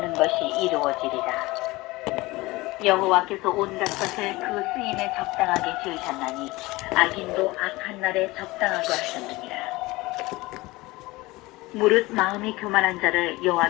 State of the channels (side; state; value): right; quieter; 20.9 dB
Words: 것이 이루어지리라. 여호와께서 온갖 것을 그 쓰임에 적당하게 지으셨나니 악인도 악한 날에 적당하게 하셨느니라. 무릇 마음이 교만한 자를